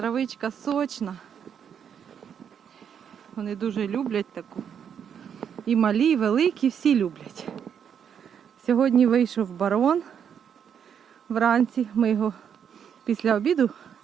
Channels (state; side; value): quieter; left; 8.0 dB